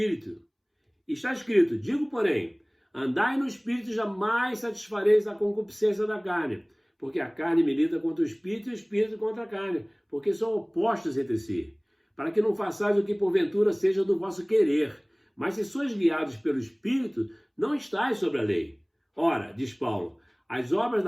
Está escrito: digo, porém, andai no Espírito e jamais satisfareis a concupiscência da carne, porque a carne milita contra o Espírito e o Espírito contra a carne, porque são opostos entre si, para que não façais o que porventura seja do vosso querer. Mas se sois guiados pelo Espírito, não estáis sobre a lei. Ora, diz Paulo, as obras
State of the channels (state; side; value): identical; both; correlation 1.00